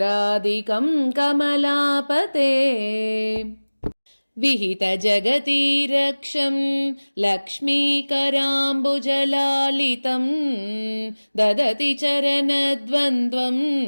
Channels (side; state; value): both; inverted; correlation -1.00